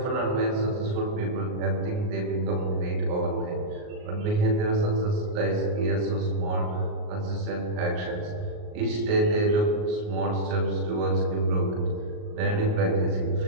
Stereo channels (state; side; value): late; left; 38 ms